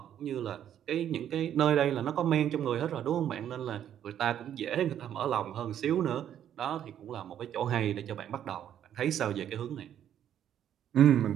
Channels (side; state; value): left; quieter; 10.2 dB